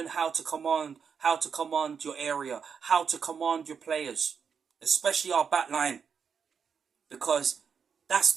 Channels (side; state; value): left; quieter; 6.5 dB